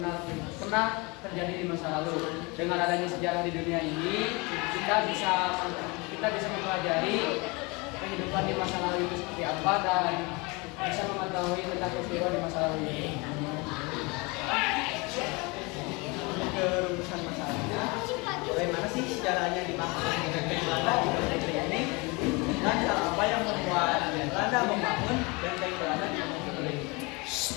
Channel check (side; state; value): right; quieter; 27.2 dB